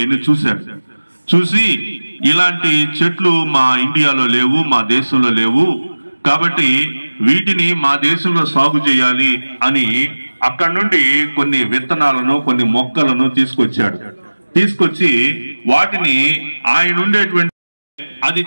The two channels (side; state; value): both; inverted; correlation -1.00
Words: చూసి ఇలాంటి చెట్లు మా ఇండియాలో లేవు, మా దేశంలో లేవు, కాబట్టి వీటిని మా దేశంలో సాగు చేయాలి అని అక్కడి నుండి కొన్ని విత్తనాలను కొన్ని మొక్కలను తీసుకొచ్చి వాటిని ఆయన ఉండేటువంటి అది